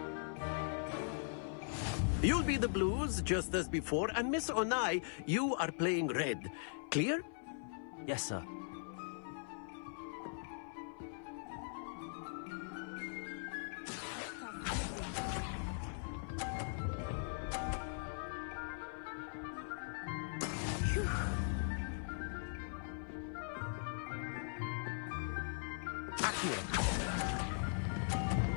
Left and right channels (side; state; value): right; silent; 51 dB below the other